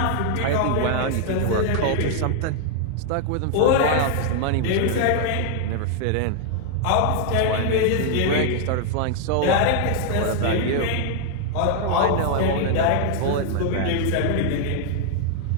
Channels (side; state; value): both; different; correlation 0.00